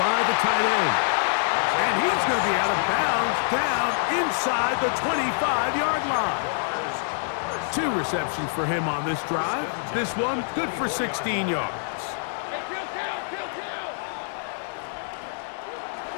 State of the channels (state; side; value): silent; right; digital silence